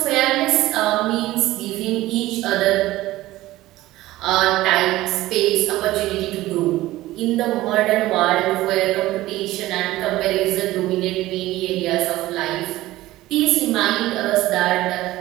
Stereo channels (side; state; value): left; quieter; 16.7 dB